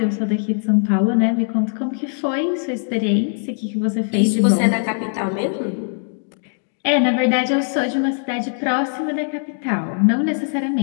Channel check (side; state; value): right; silent; digital silence